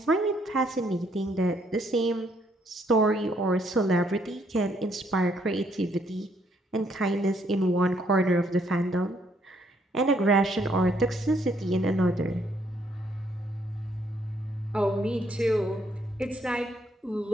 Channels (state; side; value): normal; both; correlation 0.70